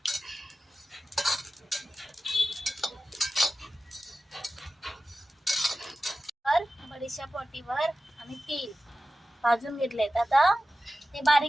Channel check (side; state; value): both; normal; correlation 0.94